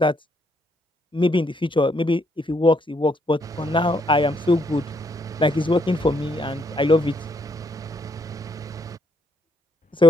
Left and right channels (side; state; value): both; normal; correlation 0.73